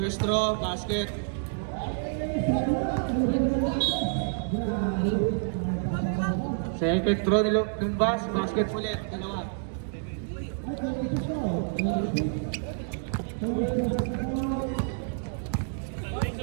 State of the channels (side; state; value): left; silent; digital silence